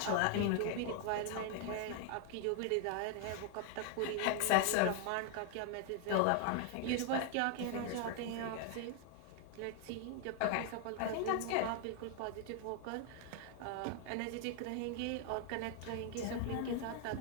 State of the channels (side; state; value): both; different; correlation 0.00